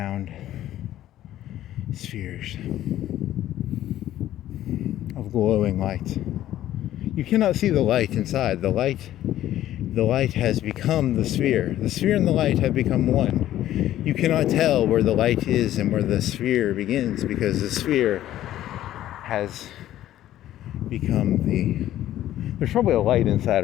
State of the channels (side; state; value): right; quieter; 13.1 dB